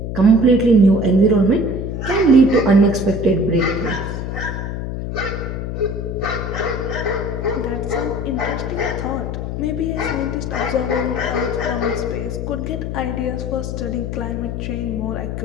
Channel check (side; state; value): left; noise; hum, 4 dB below the sound